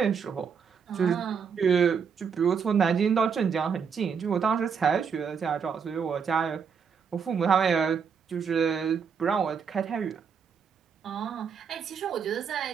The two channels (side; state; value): left; quieter; 6.5 dB